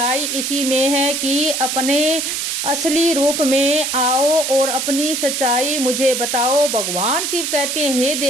इसी में है कि अपने असली रूप में आओ और अपनी सच्चाई मुझे बताओ। भगवान शिव कहते हैं, हे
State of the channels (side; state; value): right; noise; hiss, 2 dB below the sound